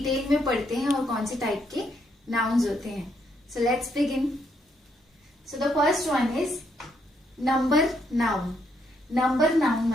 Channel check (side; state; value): both; normal; correlation 0.75